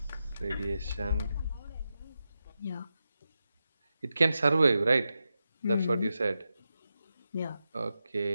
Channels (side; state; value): both; inverted; correlation -0.89